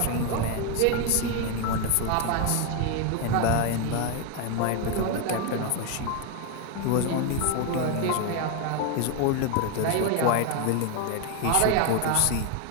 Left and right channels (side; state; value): both; different; correlation 0.01